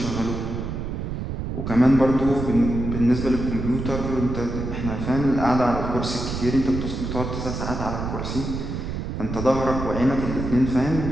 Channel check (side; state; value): right; noise; rumble, 4 dB below the sound